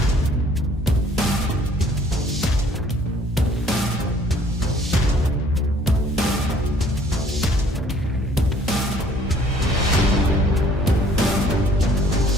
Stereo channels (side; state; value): both; normal; correlation 0.58